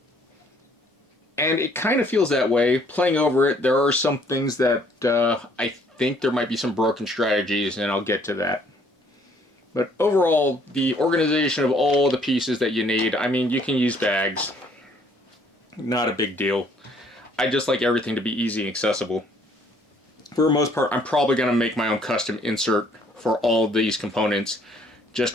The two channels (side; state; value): both; normal; correlation 0.63